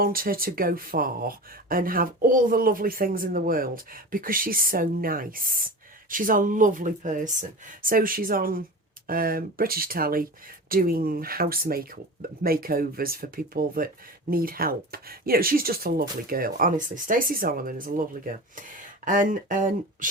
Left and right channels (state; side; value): normal; both; correlation 0.32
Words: her to go far and have all the lovely things in the world because she's so nice. She's a lovely person. So she's on British telly doing house makeovers for people that need help. You know, she's just a lovely girl. Honestly, Stacey Solomon is a lovely girl. And